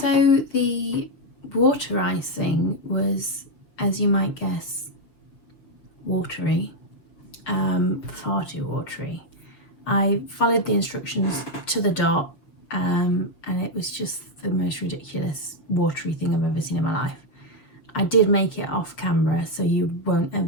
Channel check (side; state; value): right; late; 6.7 ms